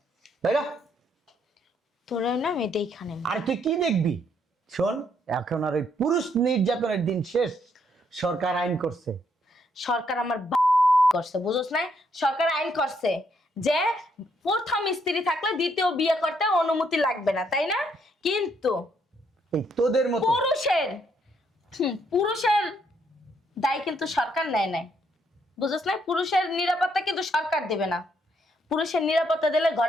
বাইরা। তোরা না আমি দেখানে। আর তুই কি দেখবি? শোন, এখন আর ওই পুরুষ নির্যাতনের দিন শেষ। সরকার আইন করছে। সরকার আমার করছে, বুঝছ না? সরকার আইন করছে যে প্রথম স্ত্রী থাকলে দ্বিতীয় বিয়ে করতে অনুমতি লাগবে না, তাই না? কিন্তু এই তোদের মতো পুরুষের দায় কিন্তু সরকার নেয় নাই, বুঝছ না? পুরুষের নিরাপত্তা কিন্তু সরকার দেবে না, পুরুষের নিরাপত্তা দিলে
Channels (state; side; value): normal; both; correlation 0.72